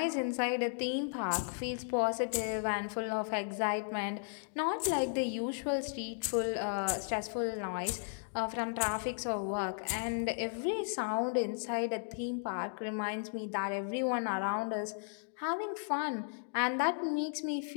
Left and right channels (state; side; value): silent; right; digital silence